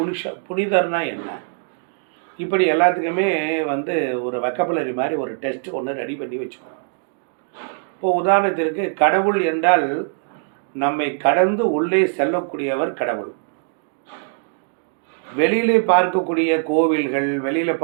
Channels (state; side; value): silent; left; digital silence